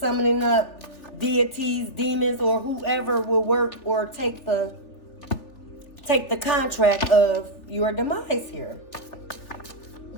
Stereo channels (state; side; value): late; right; 3.4 ms